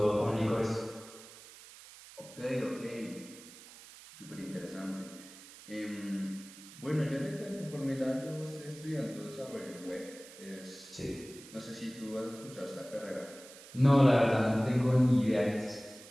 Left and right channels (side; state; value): right; noise; hiss, 18 dB below the sound